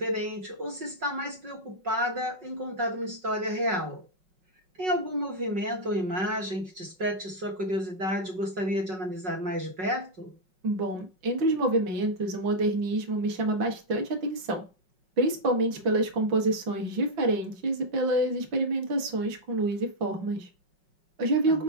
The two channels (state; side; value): late; left; 5.4 ms